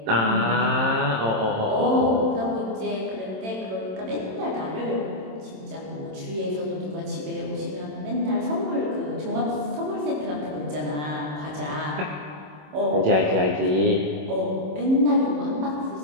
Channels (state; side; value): late; left; 27 ms